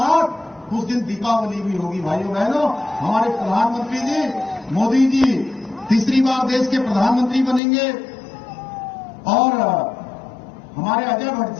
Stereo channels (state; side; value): drops out; right; at 7.6 s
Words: उस दिन दीपावली भी होगी। भाइयों बहनों, हमारे प्रधानमंत्री जी मोदी जी तीसरी बार देश के प्रधानमंत्री बनेंगे, और हमारे अजय भट्ट